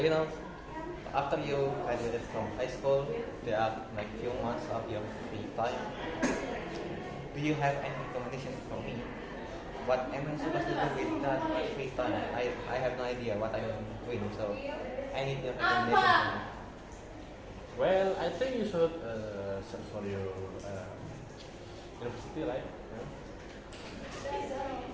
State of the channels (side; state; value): both; identical; correlation 1.00